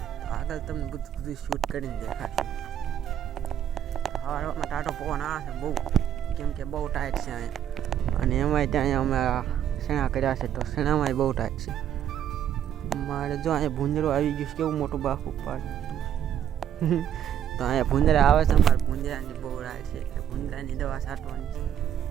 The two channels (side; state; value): left; quieter; 9.9 dB